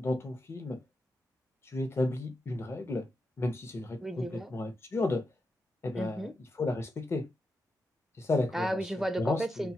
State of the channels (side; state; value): both; normal; correlation 0.87